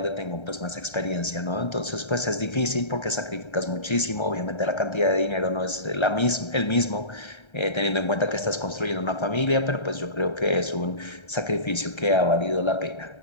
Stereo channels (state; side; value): late; right; 1.3 ms